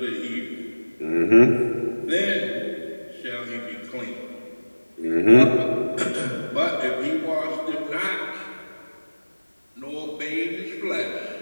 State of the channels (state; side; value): inverted; both; correlation -1.00